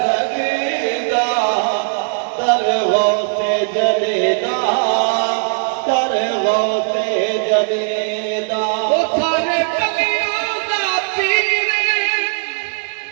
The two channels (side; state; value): left; silent; 65 dB below the other